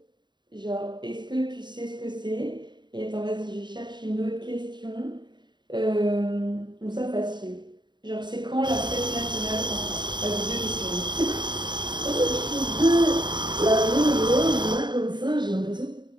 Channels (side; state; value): left; late; 0.22 ms